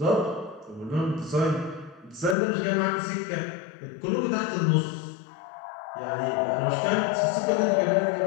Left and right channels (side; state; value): right; drops out; at 2.4 s